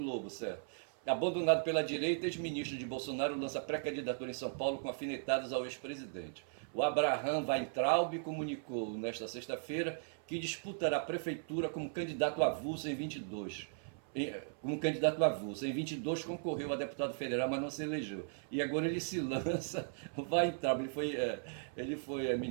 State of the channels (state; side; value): silent; left; 53 dB below the other